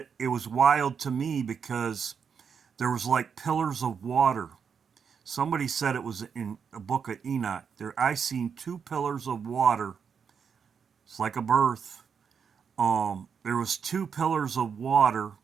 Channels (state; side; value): quieter; left; 6.7 dB